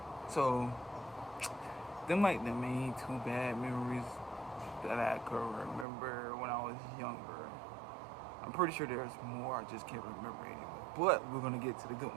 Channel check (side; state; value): left; drops out; at 5.9 s